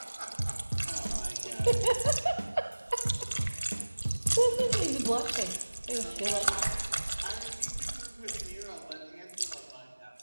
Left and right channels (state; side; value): inverted; both; correlation -1.00